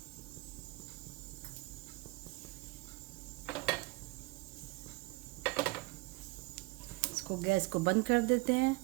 इसको गैस को बंद कर देते हैं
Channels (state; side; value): quieter; left; 24.0 dB